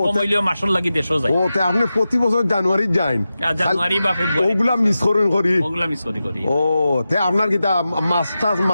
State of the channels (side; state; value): both; inverted; correlation -0.92